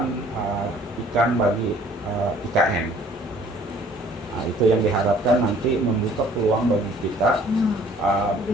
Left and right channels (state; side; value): normal; both; correlation 0.56